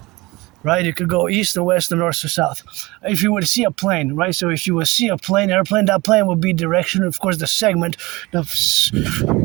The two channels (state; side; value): quieter; left; 22.1 dB